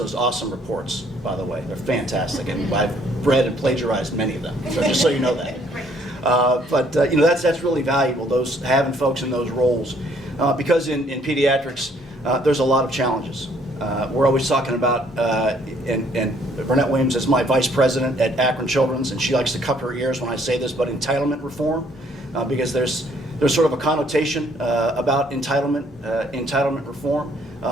awesome reports? By the way, they're fantastic, and I've read and plagiarized many of them, so just so you know that. But you know, that's really valuable, those having folks in those roles, because in pediatrics there's a lot of challenges. We're always talking about, and Burnett Williams is my vice president at Akron Children's, and she likes to cup her ears when I say this, but entitlement reform, because there's there's sort of a connotation about entitlement reform.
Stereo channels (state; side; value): normal; both; correlation 0.64